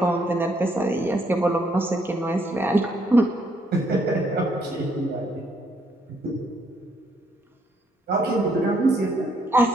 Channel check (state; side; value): normal; both; correlation 0.71